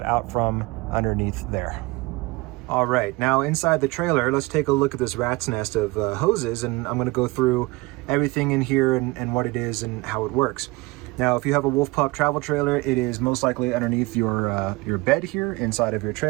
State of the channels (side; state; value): left; quieter; 23.1 dB